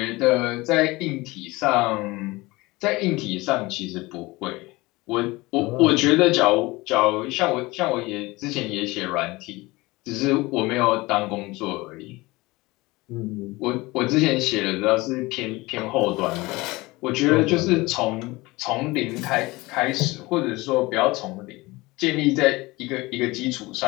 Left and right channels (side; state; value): right; quieter; 21.7 dB